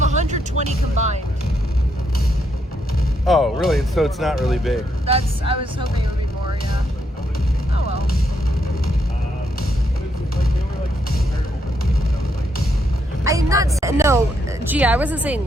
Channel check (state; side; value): normal; both; correlation 0.77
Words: combined. Oh, really? So it's not really big. I was hoping it would be more. Yeah. Oh well. I'm not saying no. Gee, I wasn't